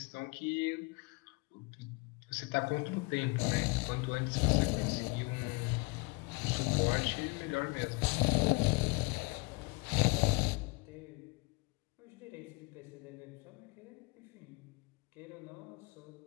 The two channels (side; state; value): right; quieter; 27.1 dB